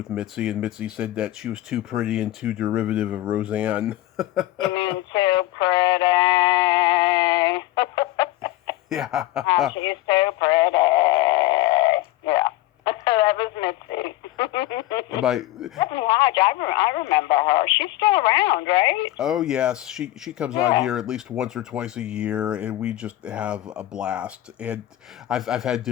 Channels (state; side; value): quieter; right; 15.8 dB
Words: Mitzi, and Mitzi said that she was too pretty and too derivative of Roseanne. You mean too pretty? Yeah. She's too pretty. Yeah. That was Mitzi. Stephanie Hodge, I remember her. She's still around, right? Oh yes, she comes on here at least once or twice a year, and we just have a blast. And I've had